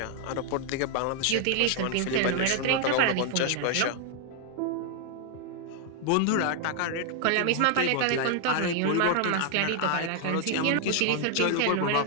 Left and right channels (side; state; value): both; different; correlation 0.00